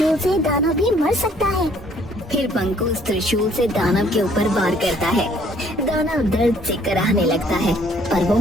से दानव भी मर सकता है। फिर बंकू उस त्रिशूल से दानव के ऊपर वार करता है। दानव दर्द से कराहने लगता है, पर वो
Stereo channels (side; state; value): both; normal; correlation 0.62